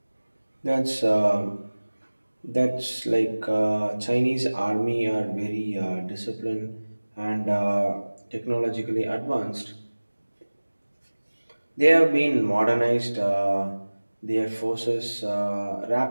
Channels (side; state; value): both; inverted; correlation -1.00